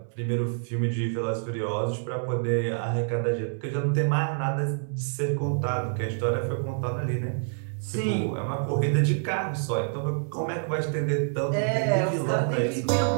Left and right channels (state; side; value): silent; left; 60 dB below the other